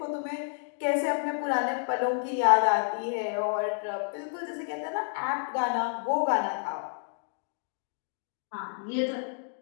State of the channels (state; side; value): silent; right; digital silence